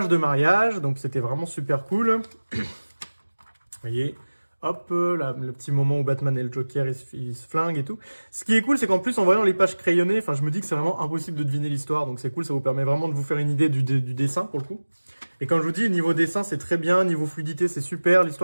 de mariage, donc c'était vraiment super cool. Vous voyez, hop, là, le petit moment où Batman et le Joker, ils se flinguent et tout. Ce qui est cool, c'est qu'en plus, en voyant les pages crayonnées, enfin, je me dis que c'est vraiment impossible de deviner l'histoire. Donc c'est cool, ça vous permet vraiment de vous faire une idée du dessin, pour le coup. Et quand je vous dis, niveau dessin, c'est très bien, niveau fluidité, c'est super,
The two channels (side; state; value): both; inverted; correlation -1.00